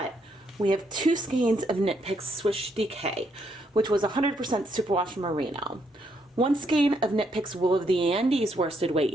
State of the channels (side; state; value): both; normal; correlation 0.75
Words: we have 2 skeins of KnitPicks Swish DK, which was 100% superwash merino. 1 skein of KnitPicks Wool of the Andes worsted weight